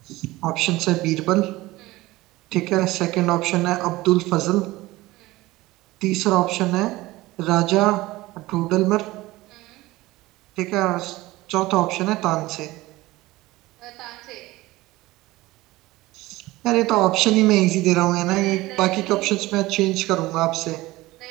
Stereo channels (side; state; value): left; quieter; 18.9 dB